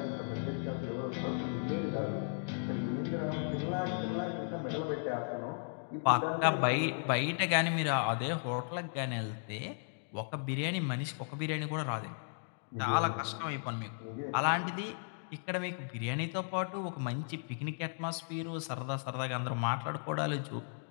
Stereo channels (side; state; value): right; silent; digital silence